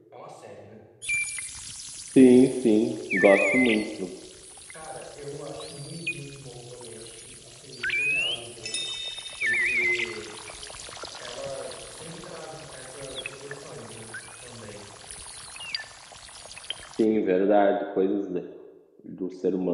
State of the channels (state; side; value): identical; both; correlation 1.00